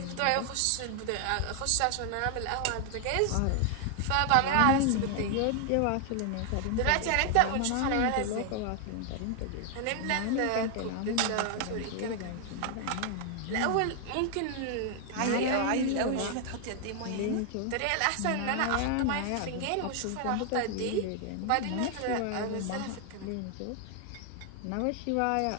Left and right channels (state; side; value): different; both; correlation 0.00